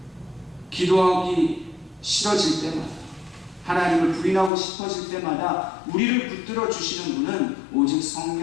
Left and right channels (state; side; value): drops out; right; at 4.5 s